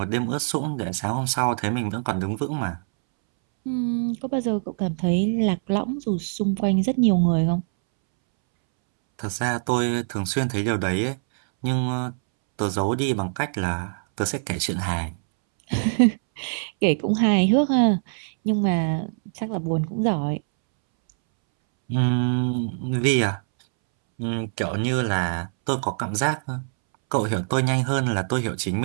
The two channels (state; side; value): silent; left; 63 dB below the other